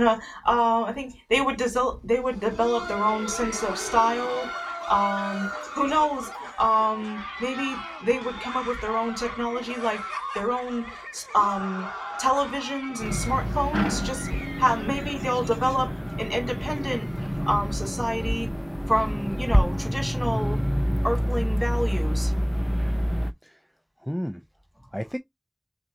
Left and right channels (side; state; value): both; identical; correlation 1.00